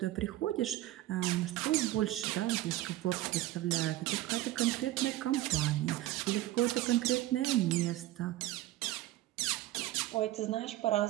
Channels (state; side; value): quieter; left; 15.6 dB